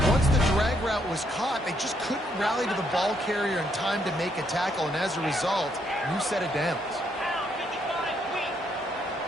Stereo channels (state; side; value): normal; both; correlation 0.74